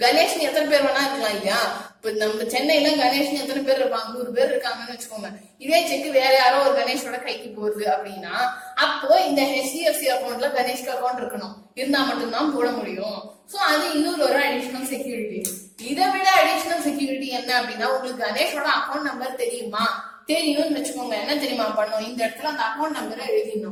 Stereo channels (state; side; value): identical; both; correlation 1.00